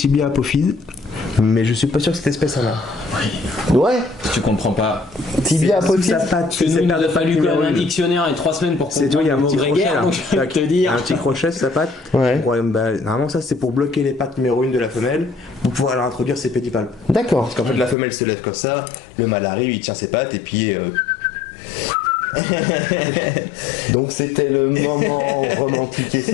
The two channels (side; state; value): right; drops out; at 17.9 s